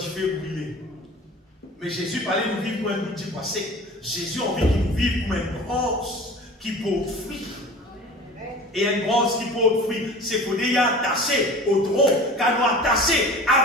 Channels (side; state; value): both; normal; correlation 0.40